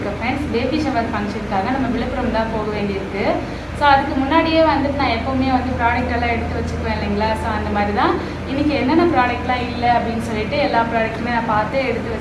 ஃப்ரெண்ட்ஸ். பேபி ஷவர் ஃபங்க்ஷனுக்காக நம்ம விழுப்புரம் தான் போக வேண்டியிருக்கு. ஸோ அதுக்கு முன்னாடியே வந்துட்டு நான் எப்போவுமே வந்து ப்ராடக்ட் எல்லாம் எடுத்து வச்சுக்குவேன் இல்லைங்களா. ஸோ அந்த மாதிரி தான் இன்றைக்கி என்னென்ன ப்ராடக்ட்லாம் இல்லை அப்படின்னு சொல்லிட்டு எல்லா ப்ராடக்ட்டுமே நான் பார்த்து எடுத்து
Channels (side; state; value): both; identical; correlation 1.00